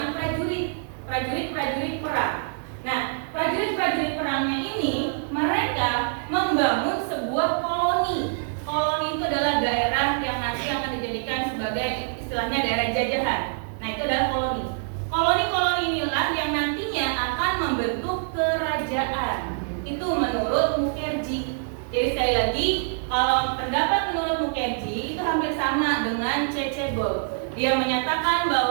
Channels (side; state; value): left; silent; digital silence